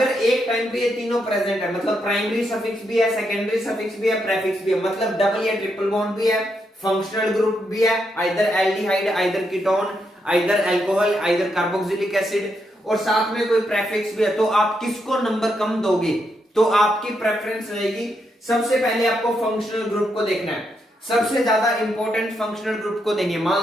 एक टाइम पे ये तीनों प्रेजेंट है, मतलब प्राइमरी सफिक्स भी है, सेकेंडरी सफिक्स भी है, प्रेफिक्स भी है, मतलब डबल या ट्रिपल बॉन्ड भी है, फंक्शनल ग्रुप भी है, either aldehyde, either ketone, either alcohol, either carboxylic acid, और साथ में कोई प्रेफिक्स भी है, तो आप किसको नंबर कम दोगे? तो आपकी प्रेफरेंस रहेगी, सबसे पहले आपको फंक्शनल ग्रुप को देखना है, सबसे ज्यादा इंपॉर्टेंट फंक्शनल ग्रुप को देंगे।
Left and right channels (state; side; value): normal; both; correlation 0.80